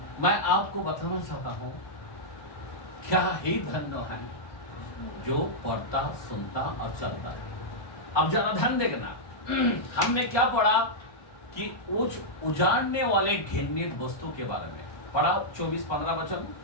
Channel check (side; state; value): right; late; 1.2 ms